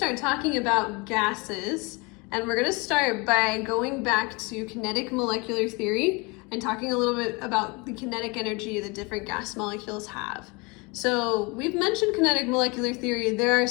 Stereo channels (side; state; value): right; quieter; 27.7 dB